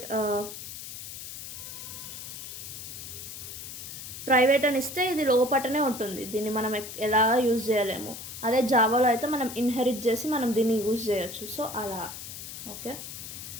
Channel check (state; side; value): noise; left; hiss, 10 dB below the sound